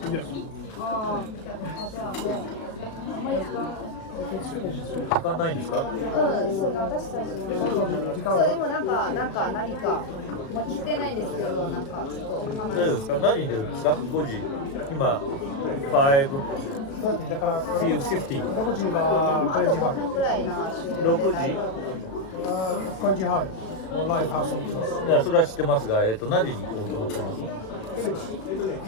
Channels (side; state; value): right; late; 36 ms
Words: Yes. 時間ないですか？そう私たちそうでもなんか何か聞いてないんですけどなんかちょっと大丈夫ですか？何に出るんですか？5時今だから5:50 6時は5時半。ぐらいの6時5時半のライブハウスに行きます。いやそれは知ってますが、何時に行こうと思ってます？